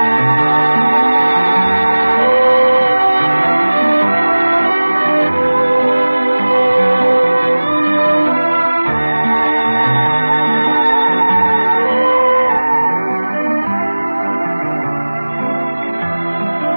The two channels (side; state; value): both; inverted; correlation -1.00